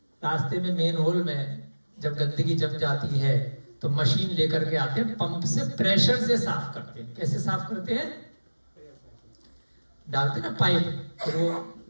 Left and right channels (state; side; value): inverted; both; correlation -1.00